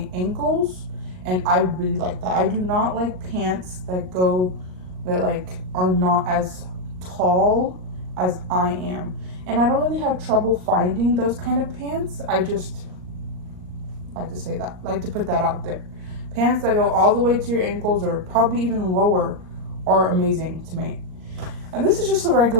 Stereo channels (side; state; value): left; late; 38 ms